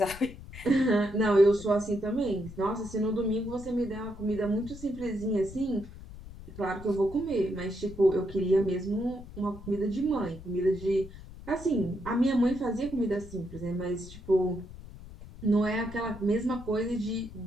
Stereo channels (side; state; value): left; noise; rumble, 15 dB below the sound